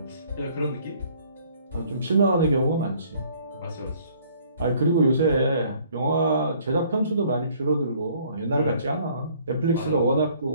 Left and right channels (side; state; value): both; inverted; correlation -0.59